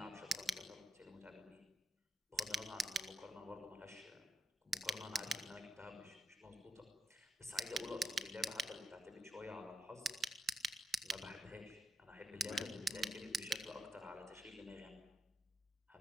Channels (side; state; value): both; normal; correlation 0.82